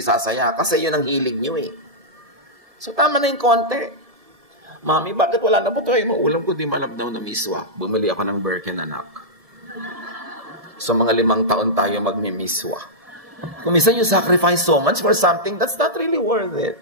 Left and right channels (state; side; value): late; left; 1.7 ms